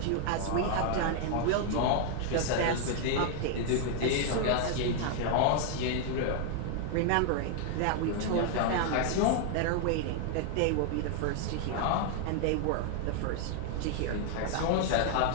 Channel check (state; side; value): different; both; correlation 0.00